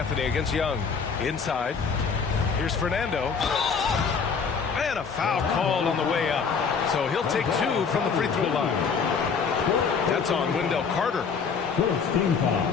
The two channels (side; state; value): right; quieter; 5.8 dB